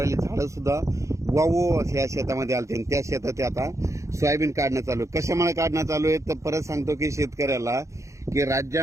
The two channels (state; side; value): late; left; 0.15 ms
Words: झाडं सुद्धा वावो या शेतामध्ये आलते आणि त्या शेतात आता सोयाबीन काढणं चालू आहे। कशामुळे काढणं चालू आहे तर परत सांगतो की शेतकऱ्याला की